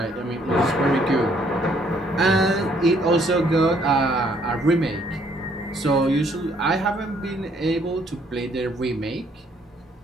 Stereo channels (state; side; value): normal; both; correlation 0.66